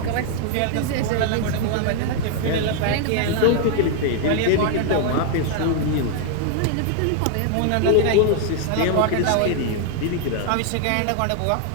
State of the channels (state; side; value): different; both; correlation 0.00